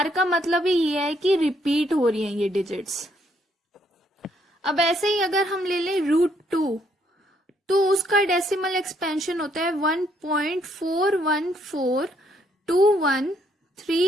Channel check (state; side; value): normal; both; correlation 0.70